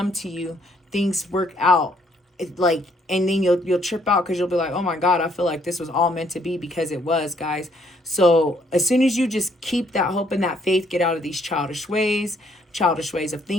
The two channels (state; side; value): normal; both; correlation 0.67